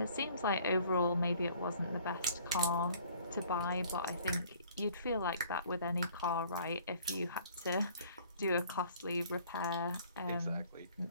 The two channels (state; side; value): inverted; both; correlation -0.56